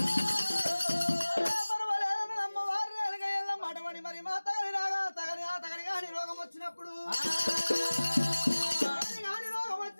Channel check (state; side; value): inverted; both; correlation -1.00